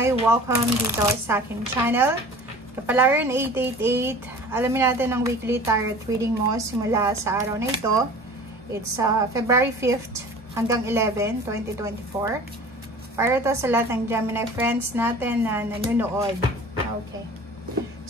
Welcome dito sa aking channel. Kapalaran 888, alamin natin ang weekly tarot reading mo simula sa araw na ito. It's February 5th hanggang 11, 2024. Para to sa lahat ng Gemini friends natin na nanonood. Okay.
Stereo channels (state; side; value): normal; both; correlation 0.42